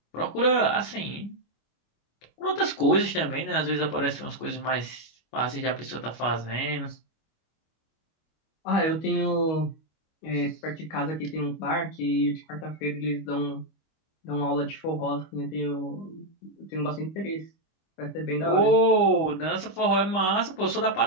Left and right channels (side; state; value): right; late; 25 ms